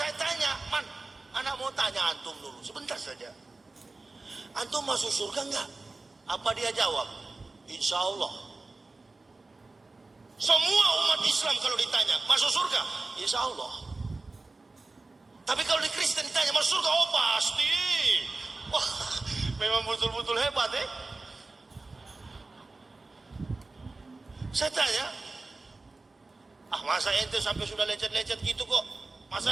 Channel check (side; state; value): left; quieter; 3.4 dB